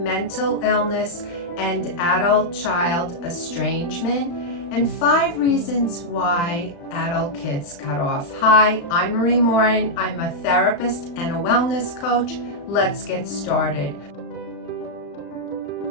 mental illness and adult-child estrangement and 5 reasons why adult kids cut off. Hi, I'm Marie Morin. I'm a therapist and a wellness coach. Let's get started.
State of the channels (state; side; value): late; right; 35 ms